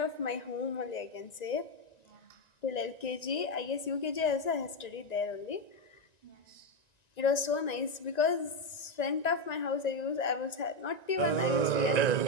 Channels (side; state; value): right; late; 1.9 ms